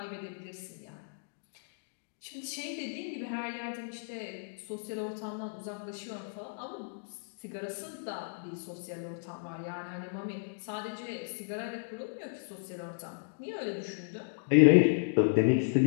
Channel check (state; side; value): silent; right; digital silence